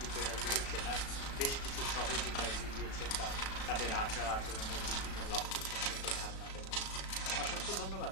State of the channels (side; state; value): right; late; 36 ms